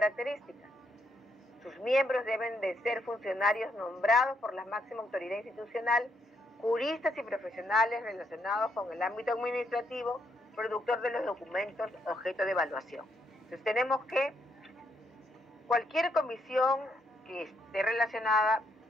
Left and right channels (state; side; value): normal; both; correlation 0.76